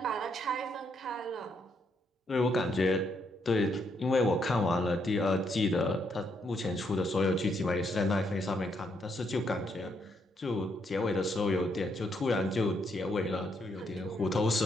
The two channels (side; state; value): both; normal; correlation 0.76